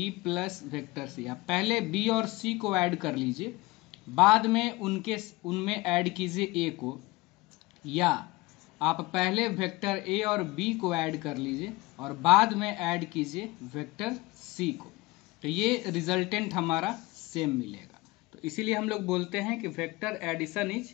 plus vector C, आप पहले बी और सी को ऐड कर लीजिए, बाद में उनमें ऐड कीजिए ए को, या आप पहले वेक्टर ए और बी को ऐड कर लीजिए और बाद में ऐड कीजिए वेक्टर सी को, तो ये रिजल्टेंट हमारा सेम मिलेगा। तो इसीलिए हम लोग बोलते हैं कि vector addition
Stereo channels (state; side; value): quieter; right; 21.5 dB